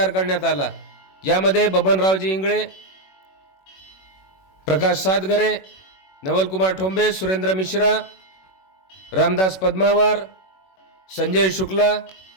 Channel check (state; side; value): late; right; 21 ms